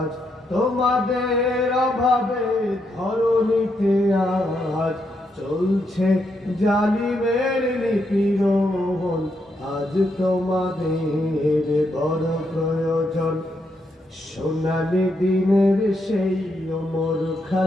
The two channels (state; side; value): normal; both; correlation 0.79